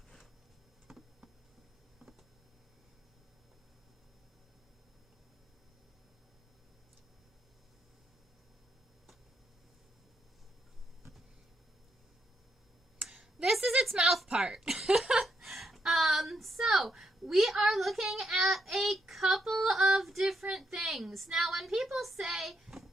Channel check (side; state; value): both; normal; correlation 0.80